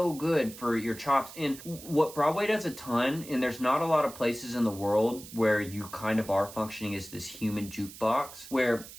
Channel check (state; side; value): noise; right; hiss, 15 dB below the sound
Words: good for your chops. And what Broadway does a ton, and there's not a lot of places in the world where you kind of are functioning as this human jukebox, where